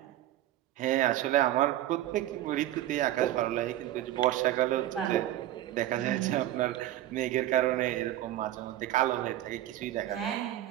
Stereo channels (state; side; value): quieter; left; 14.0 dB